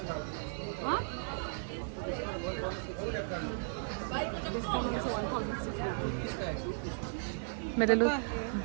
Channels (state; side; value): silent; left; digital silence